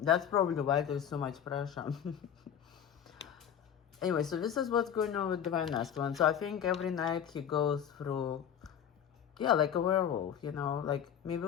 probably why there's so much pressure. Anyway, so this is what's going on with Divine Masculine. So I think every night he goes through, yeah, like a werewolf, like maybe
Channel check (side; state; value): right; quieter; 8.9 dB